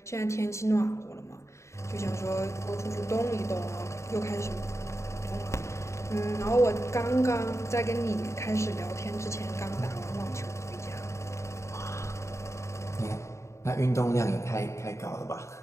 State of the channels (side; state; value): right; late; 0.14 ms